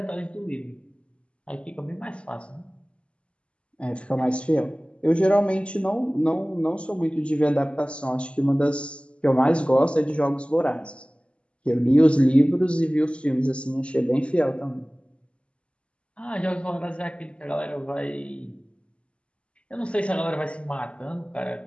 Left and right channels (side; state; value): right; late; 0.056 ms